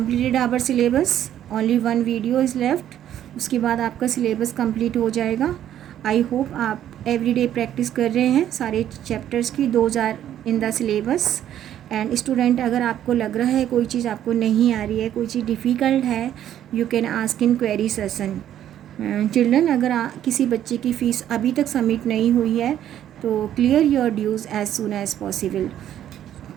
our syllabus. Only one video is left. उसके बाद आपका syllabus complete हो जाएगा. I hope आप everyday practice कर रहे हैं सारे chapters की. Those are in the syllabus. And student अगर आपको लग रहा है कोई चीज़ आपको नहीं आ रही है, कोई चीज़ डिफ़िकल्ट है, you can ask in query session. Children, अगर किसी बच्चे की फ़ीस अभी तक सबमिट नहीं हुई है तो clear your dues as soon as possible.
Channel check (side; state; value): left; quieter; 11.1 dB